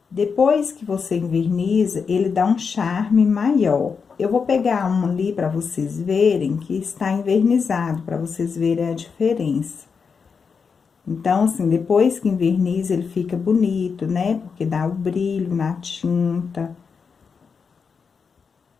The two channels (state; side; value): quieter; right; 5.7 dB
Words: Depois que você enverniza, ele dá um charme maior. Eu vou pegar um ali para vocês verem que está envernizado, para vocês verem a diferença. Então, assim, depois que enverniza, ele fica bonito, né? Porque dá o brilho na tinta.